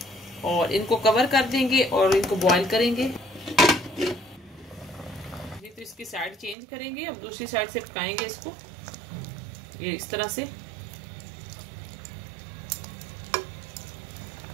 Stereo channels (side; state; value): left; drops out; at 6.6 s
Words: और इनको कवर कर देंगे और इनको बॉईल करेंगे। तो इसकी साइड चेंज करेंगे, अब दूसरी साइड से पकाएंगे इसको, ये इस तरह से।